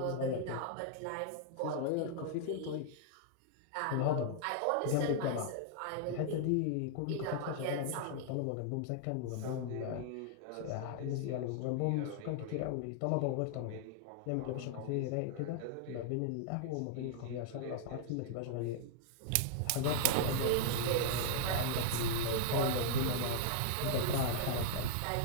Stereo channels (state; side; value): different; both; correlation -0.01